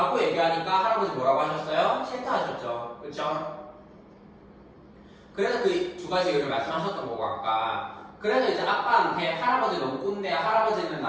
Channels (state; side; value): identical; both; correlation 1.00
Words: 얘기하니까 할아버지 뭐라고 하셨어요? 싫다 하셨죠. 그렇죠? 그래서 그 두 가지 이유를 말씀하셨던 거고 아까. 그래서 이제 아빠한테 할아버지 너무 꼰대야 할아버지는